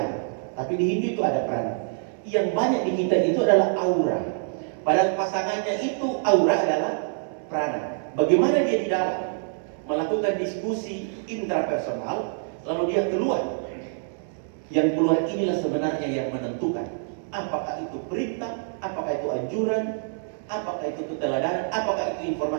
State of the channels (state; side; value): silent; left; 61 dB below the other